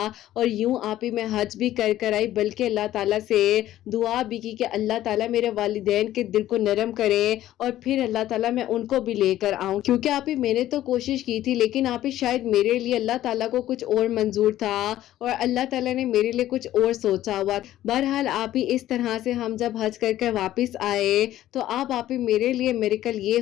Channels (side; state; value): right; quieter; 13.6 dB